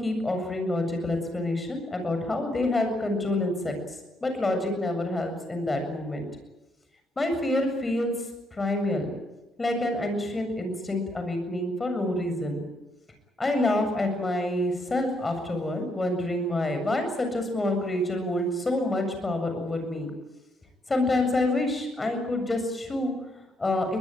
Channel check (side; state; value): both; normal; correlation 0.75